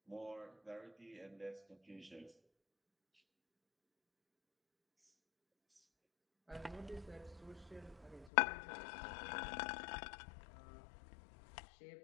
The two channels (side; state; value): right; drops out; at 8.3 s